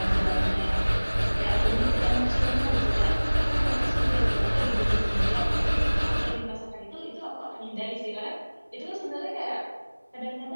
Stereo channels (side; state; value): both; inverted; correlation -1.00